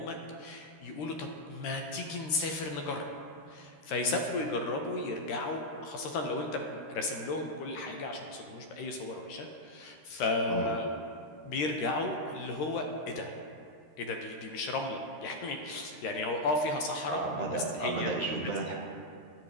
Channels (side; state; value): right; late; 13 ms